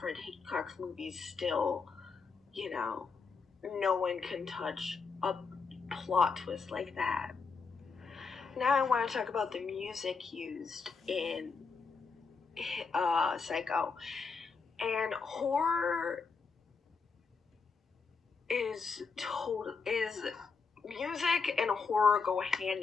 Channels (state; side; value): quieter; right; 5.0 dB